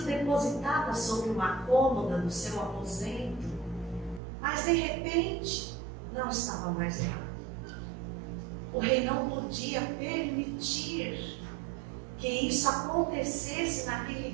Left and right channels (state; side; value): drops out; left; at 4.2 s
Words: depositada sobre uma cômoda do seu aposento, mas de repente não estava mais lá. O rei não podia permitir que isso acontecesse naquele